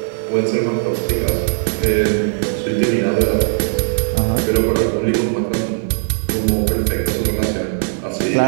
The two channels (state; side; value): silent; left; digital silence